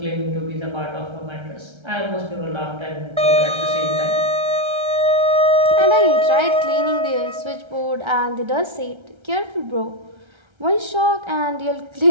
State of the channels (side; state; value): left; late; 1.3 ms